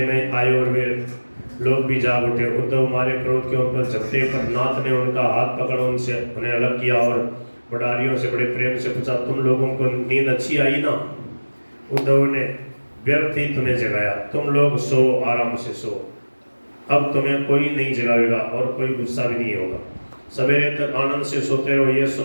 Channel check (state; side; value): inverted; both; correlation -1.00